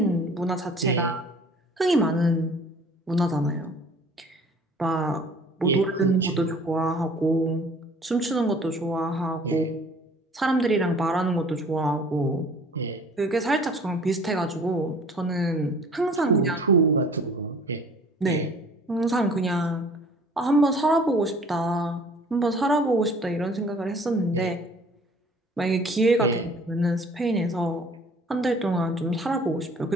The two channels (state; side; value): normal; both; correlation 0.51